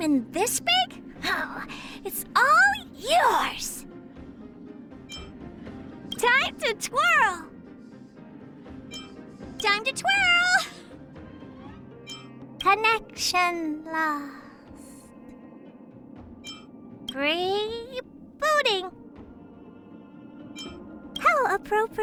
this big? Oh, it's all yours! Time to twirl! Time to twirl! Connection lost. Rebooting. How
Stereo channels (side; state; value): both; identical; correlation 1.00